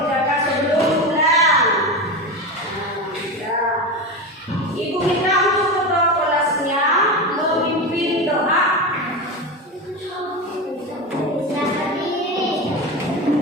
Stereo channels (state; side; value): normal; both; correlation 0.21